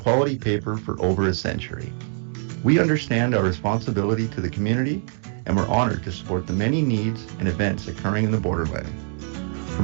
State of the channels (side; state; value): left; silent; 57 dB below the other